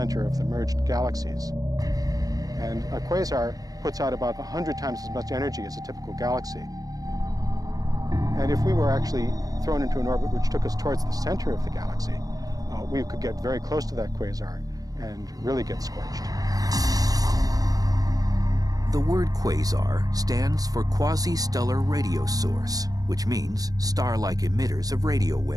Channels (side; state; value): left; late; 0.18 ms